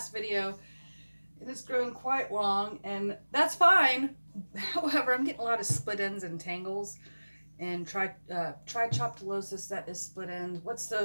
video, and it's grown quite long, and that's fine. However, I'm getting a lot of split ends and tangles, and trichoptilosis, that is split ends. What's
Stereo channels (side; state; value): both; inverted; correlation -1.00